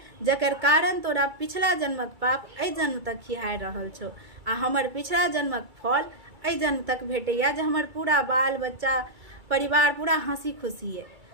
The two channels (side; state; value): left; late; 2.3 ms